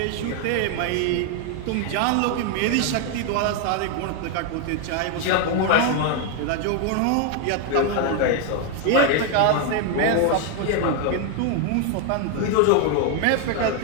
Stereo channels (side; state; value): both; different; correlation 0.01